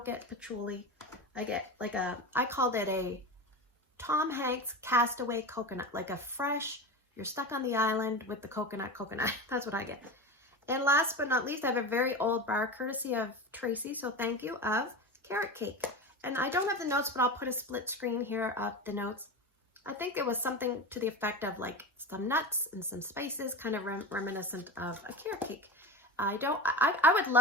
get patchouli. I get like I called it a Tom Hanks castaway coconut, like a fresh, you're stuck on the island with the coconut. That's what I get. And last but not least, I have a very old bar, courtesy of Tracy, so thank you, of carrot cake. And I don't have the notes, but I'll put a split screen here of the notes. I think it was something to the effect of like some nuts and some spices, kind of reminiscent of a carrot cake. I would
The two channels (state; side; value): normal; both; correlation 0.25